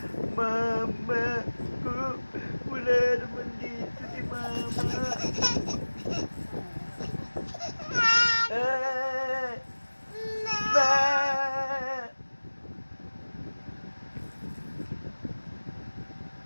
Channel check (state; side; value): inverted; both; correlation -1.00